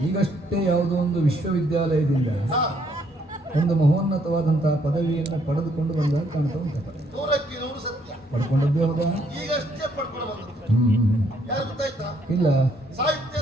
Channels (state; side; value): normal; both; correlation 0.69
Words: ಈಗಷ್ಟೇ ಯಾವುದೋ ಒಂದು ವಿಶ್ವವಿದ್ಯಾಲಯದಿಂದ ಹಾ, ಒಂದು ಮಹೋನ್ನತವಾದಂತಹ ಪದವಿಯನ್ನು ಪಡೆದುಕೊಂಡು ಬಂದಾಗ ಕಾಣ್ತಾ ಉಂಟು. 100ಕ್ಕೆ 100 ಸತ್ಯ. ಪಡ್ಕೊಂಡದ್ದೇ ಹೌದಾ? ಈಗಷ್ಟೇ ಪಡ್ಕೊಂಡು ಬಂದದ್ದು. ಯಾರು ಗೊತ್ತಾಯ್ತಾ? ಇಲ್ಲ. ಸಾಹಿತ್ಯ